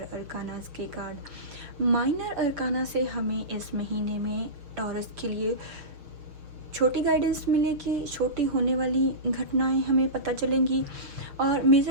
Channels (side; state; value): left; late; 6.6 ms